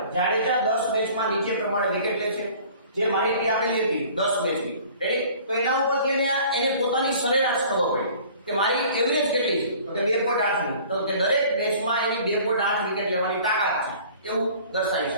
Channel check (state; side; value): inverted; both; correlation -0.49